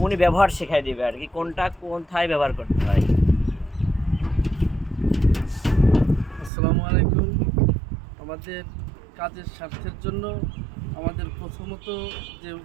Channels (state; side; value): drops out; left; at 6.5 s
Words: উনি ব্যবহার শেখাই দেবে আর কি, কোনটা কোথায় ব্যবহার করতে হয়। আসসালামু আলাইকুম। আমাদের কাজের স্বার্থের জন্য আমাদের প্রথমত যে